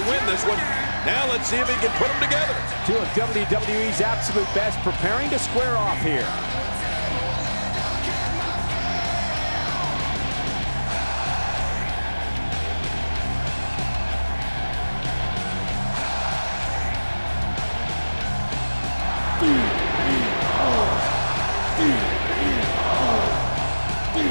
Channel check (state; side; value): inverted; both; correlation -1.00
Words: win this one. Now let's see if he can put them together. Two of WWE's absolute best preparing to square off here.